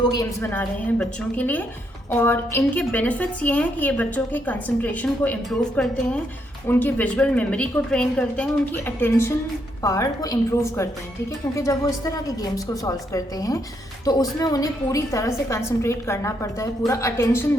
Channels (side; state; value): both; normal; correlation 0.76